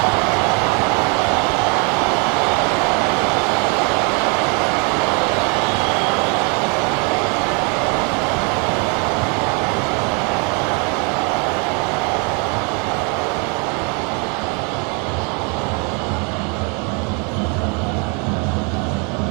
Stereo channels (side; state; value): left; quieter; 34.2 dB